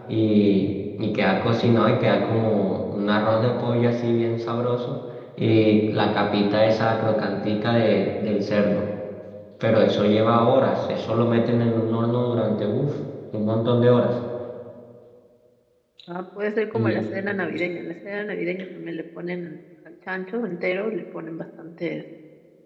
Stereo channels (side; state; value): both; identical; correlation 1.00